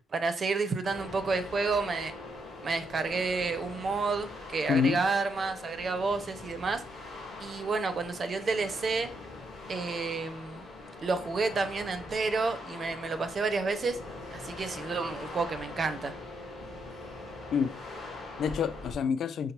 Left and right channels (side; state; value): both; normal; correlation 0.78